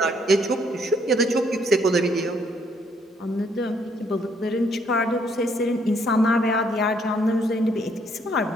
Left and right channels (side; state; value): both; normal; correlation 0.68